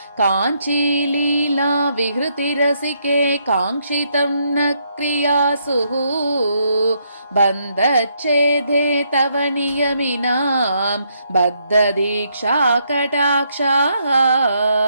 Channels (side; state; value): both; inverted; correlation -0.75